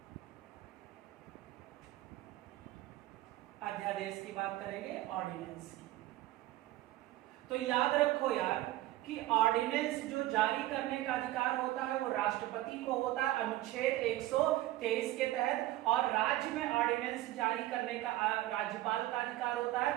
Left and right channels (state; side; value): quieter; left; 15.9 dB